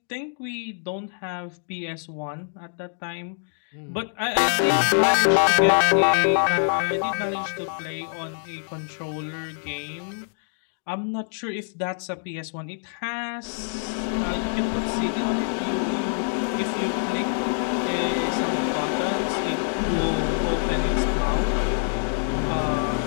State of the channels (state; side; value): silent; right; digital silence